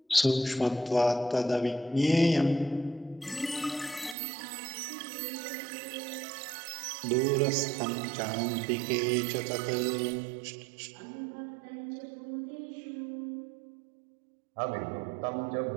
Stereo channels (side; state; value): left; drops out; at 4.2 s